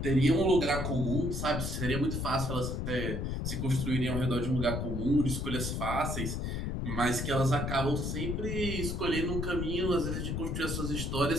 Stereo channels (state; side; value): noise; left; rumble, 2 dB below the sound